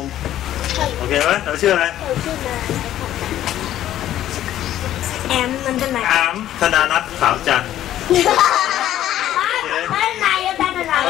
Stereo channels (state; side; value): quieter; right; 12.5 dB